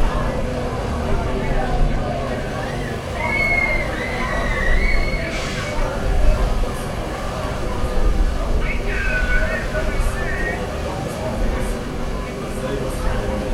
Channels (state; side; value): identical; both; correlation 1.00